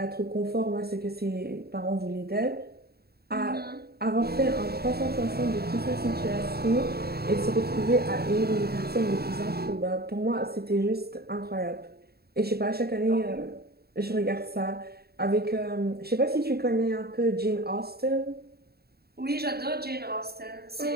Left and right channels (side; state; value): left; late; 0.46 ms